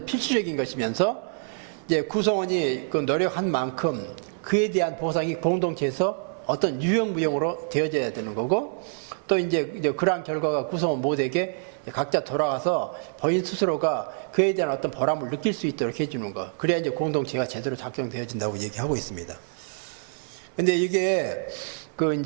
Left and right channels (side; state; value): left; silent; 61 dB below the other